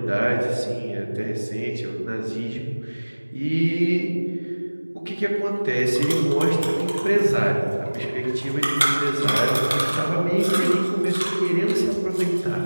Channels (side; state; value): both; inverted; correlation -1.00